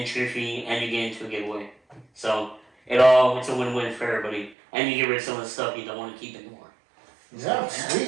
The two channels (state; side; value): drops out; left; at 4.5 s